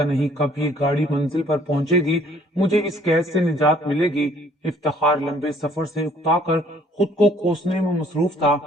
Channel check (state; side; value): normal; both; correlation 0.60